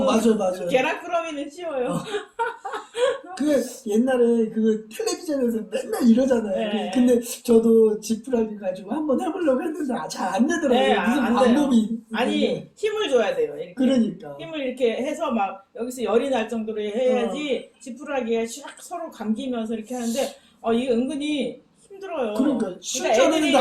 맞아요. 계란꾸러미는 쉬워요. 그 옛날에 그 텔레비전에서 맨날 이러잖아요. 네. 근데 저도 지푸라기 가지고 한번 해보려고 했는데 잘 안 되더라고요. 네, 무슨 안 방법이 아니 있는데. 힘을 줘야 돼요. 이렇게. 그러니까 힘을 이렇게 해서 막 여기서 열이 날 정도로 해야지 지푸라기가 샥 서로 감기면서 이렇게 하는데 이게 은근히 힘들어요. 그러니까 실전에는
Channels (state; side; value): identical; both; correlation 1.00